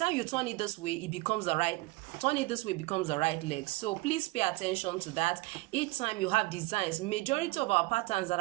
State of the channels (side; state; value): left; quieter; 22.5 dB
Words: you turn it this way, it becomes the right. Turn it this way becomes the right leg. So please pay attention to that. Each time you have designs, majority of our patterns that